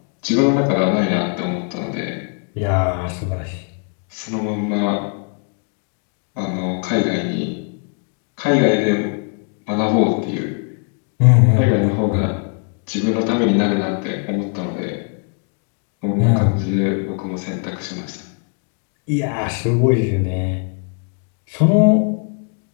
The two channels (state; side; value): quieter; right; 39.2 dB